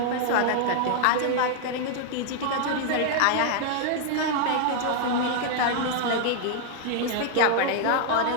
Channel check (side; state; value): both; different; correlation 0.00